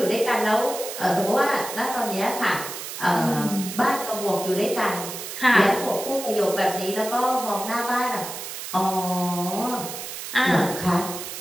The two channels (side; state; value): right; noise; hiss, 8 dB below the sound